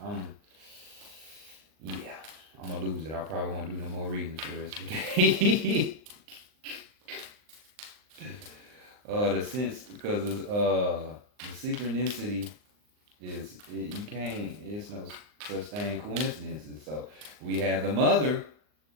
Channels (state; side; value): late; left; 39 ms